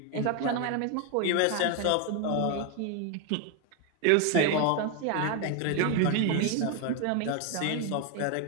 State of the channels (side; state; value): both; different; correlation 0.01